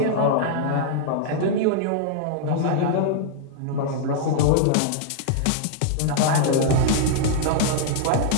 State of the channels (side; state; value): both; different; correlation -0.01